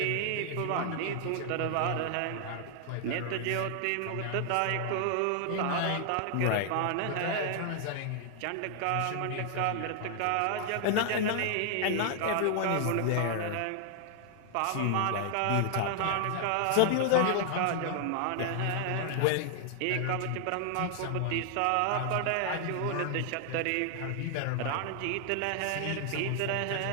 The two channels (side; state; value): both; different; correlation 0.00